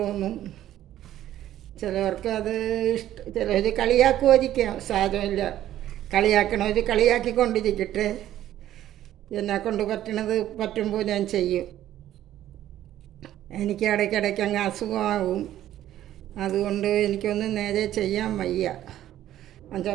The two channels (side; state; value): left; quieter; 12.6 dB